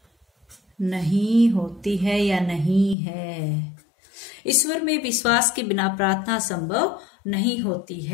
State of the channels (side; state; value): right; drops out; at 3.0 s